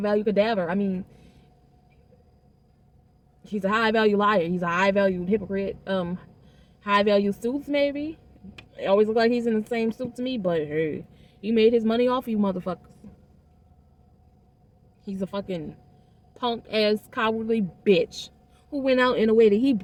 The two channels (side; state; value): both; identical; correlation 1.00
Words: cadaver. I mean, he's a high value liar. He's a high value hypocrite. High value suits, maybe. It always look like he's in the same suit to me, but hey, he made his money off you motherfuckers. He's a fucking punk ass cowardly bitch who went out in a way that he